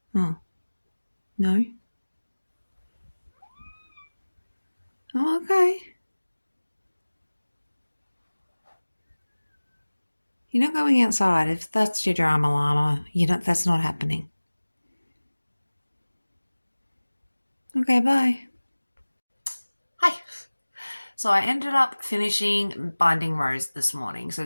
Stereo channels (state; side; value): inverted; both; correlation -1.00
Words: Oh. No? Oh, okay. You're not going outside. If that's your drama llama, that's not happening. Okay, bye. Hi. So I ended up finishing Binding Rose this morning. So